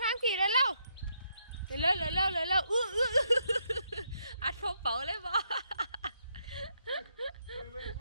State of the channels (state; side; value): inverted; both; correlation -0.76